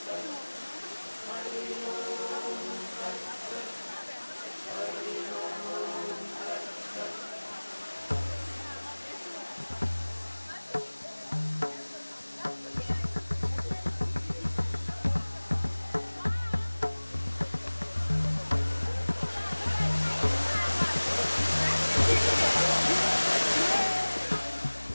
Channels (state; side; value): inverted; both; correlation -1.00